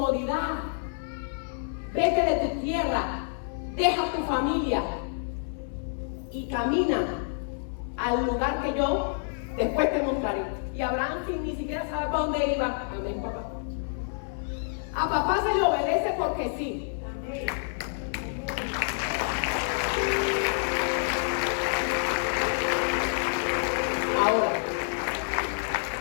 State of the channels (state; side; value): silent; right; 58 dB below the other